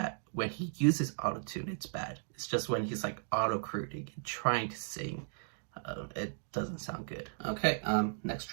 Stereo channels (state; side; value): silent; left; digital silence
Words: when he uses autotune it's bad. It's just when he's like auto-crooning and trying to sing, it doesn't sound good. Okay, next